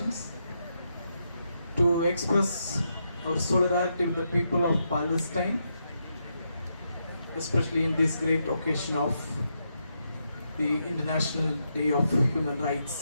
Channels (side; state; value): both; inverted; correlation -0.82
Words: to express our solidarity with the people of Palestine, especially in this great occasion of the International Day of Human Rights.